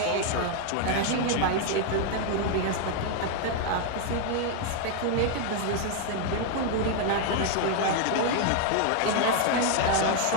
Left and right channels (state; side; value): different; both; correlation 0.00